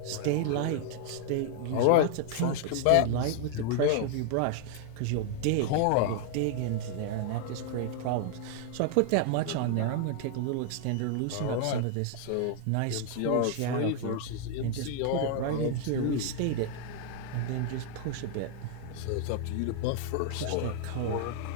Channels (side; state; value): both; different; correlation 0.00